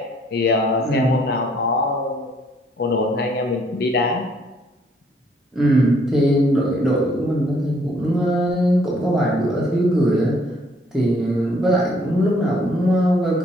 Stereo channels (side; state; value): both; normal; correlation 0.65